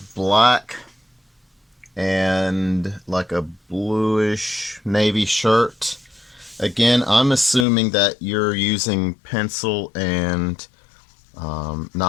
black and like a bluish navy shirt. Again, I'm assuming that you're using pencil and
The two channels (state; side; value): drops out; right; at 7.7 s